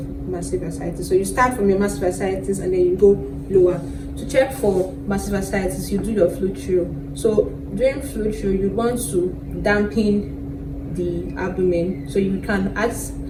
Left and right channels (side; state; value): both; identical; correlation 1.00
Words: massive ascites. So you start from your massive ascites and then you go lower. To check for massive ascites, you do your fluid through. So during fluid through, you want to dampen the abdomen. So you can ask